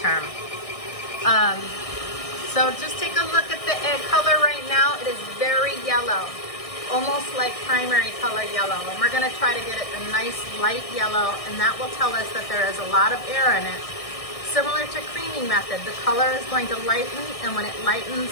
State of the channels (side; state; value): right; late; 1.6 ms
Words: So just take a look at the egg color right now. It is very yellow, almost like primary color yellow. And we're gonna try to get it a nice light yellow, and that will tell us that there is a lot of air in it. Similar to creaming method, the color is going to lighten, and when it lightens,